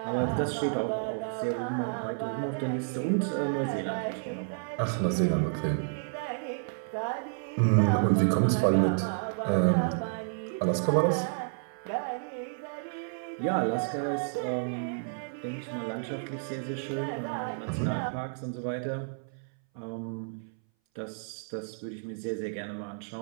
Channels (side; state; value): left; silent; 57 dB below the other